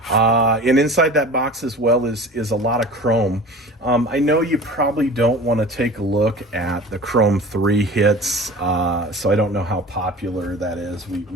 And inside that box as well is a lot of chrome. I know you probably don't want to take a look at the Chrome 3 hits, so I don't know how popular that is.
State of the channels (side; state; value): both; normal; correlation 0.39